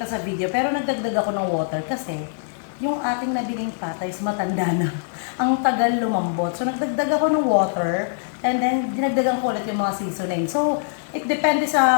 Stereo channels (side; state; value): right; silent; digital silence